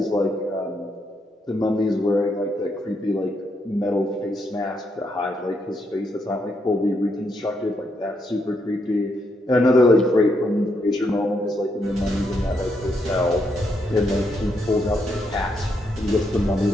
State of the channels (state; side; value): normal; both; correlation 0.78